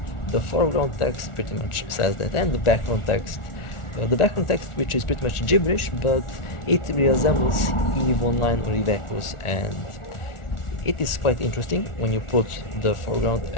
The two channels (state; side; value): late; right; 1.4 ms